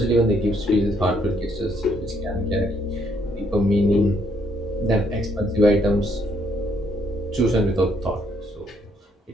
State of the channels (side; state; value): both; normal; correlation 0.70